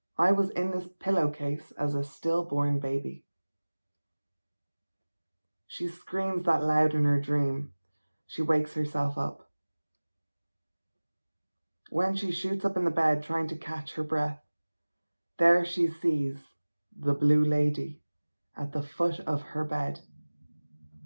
I was in this pillowcase as a stillborn baby. She screams that loud in her dream. She wakes herself up. When she shoots up in the bed trying to catch her breath, there she sees the blue lady at the foot of her bed.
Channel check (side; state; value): both; inverted; correlation -1.00